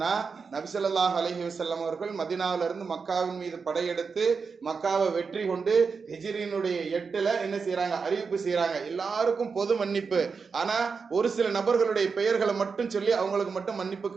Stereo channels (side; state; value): left; quieter; 5.2 dB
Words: நபி ஸல்லல்லாஹு அலைஹி வஸல்லம் அவர்கள் மதீனாவில இருந்து மக்காவின் மீது படையெடுத்து மக்காவை வெற்றி கொண்டு ஹிஜ்ரியினுடைய 8ல என்ன செய்யறாங்க, அறிவிப்பு செய்யறாங்க, எல்லாருக்கும் பொது மன்னிப்பு. ஆனா ஒரு சில நபர்களுடைய பெயர்களை மட்டும் சொல்லி அவங்களுக்கு மட்டும் மன்னிப்பு